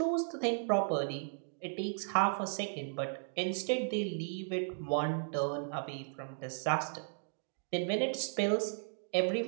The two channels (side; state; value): left; silent; digital silence